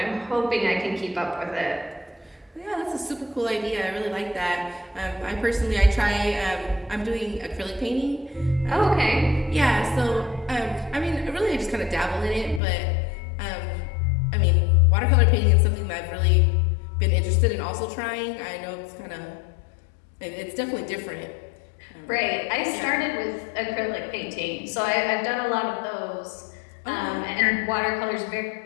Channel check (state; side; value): drops out; right; at 12.6 s